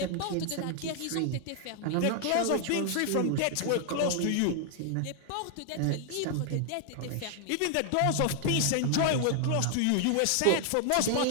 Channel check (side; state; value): both; different; correlation 0.00